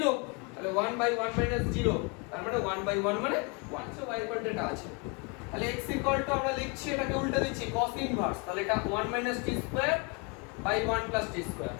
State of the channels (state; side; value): quieter; right; 31.3 dB